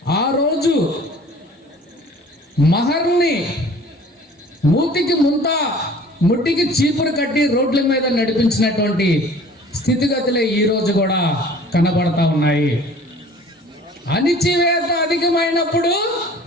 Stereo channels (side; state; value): both; normal; correlation 0.48